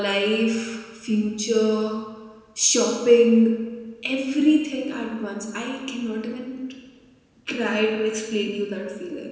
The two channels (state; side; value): identical; both; correlation 1.00